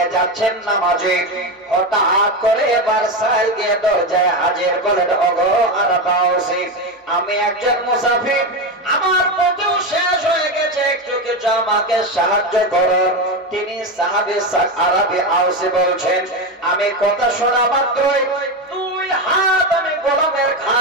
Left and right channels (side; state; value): both; normal; correlation 0.15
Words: যাচ্ছেন নামাজে। হঠাৎ করে এবার সাহেব গিয়ে দরজায় হাজির বলেন, ওগো আরাবাসী, আমি একজন মুসাফির, আমার পথও শেষ হয়ে গেছে, একটু কিছু আমাকে সাহায্য করুন। তিনি সাহাবী আরাবী আউসী বলছেন, আমি কথা শোনা মাত্রই দুই হাত আমি গোলামের